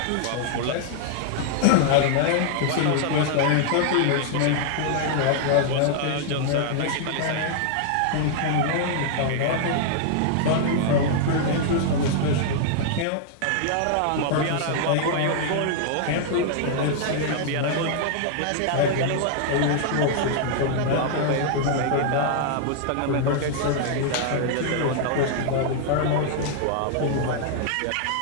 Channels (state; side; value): different; both; correlation 0.00